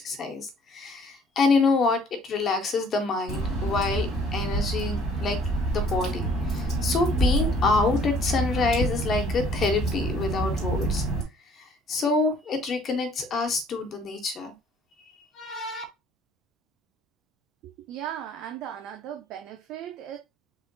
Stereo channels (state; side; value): normal; both; correlation 0.58